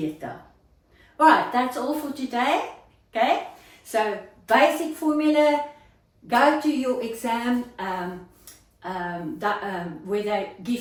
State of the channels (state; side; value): identical; both; correlation 1.00